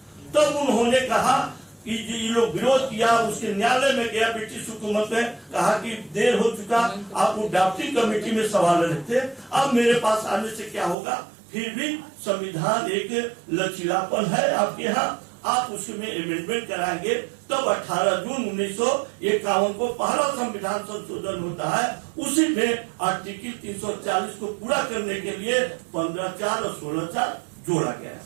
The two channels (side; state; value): left; drops out; at 11.0 s